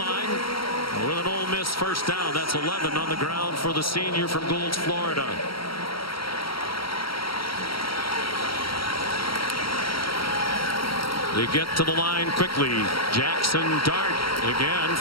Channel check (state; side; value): late; right; 0.74 ms